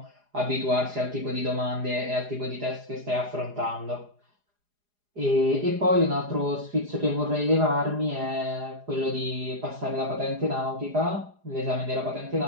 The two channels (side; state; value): left; late; 4.9 ms